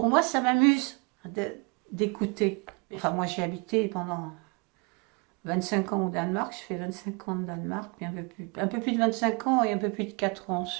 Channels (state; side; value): quieter; left; 31.6 dB